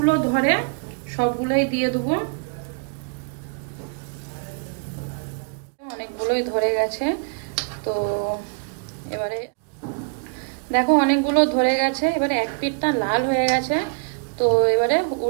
ধরে সবগুলোই দিয়ে দেবো। অনেকগুলোই ধরে গেছে। তো এবারে দেখো অনেকগুলো ধরে গেছে। এবারে এক পিঠটা লাল হয়ে গেছে, তো এবারে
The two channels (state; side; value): quieter; left; 38.5 dB